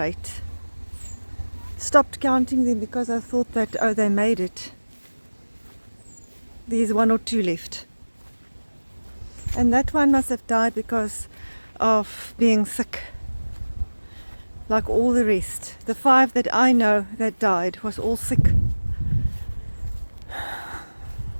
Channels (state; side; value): inverted; both; correlation -1.00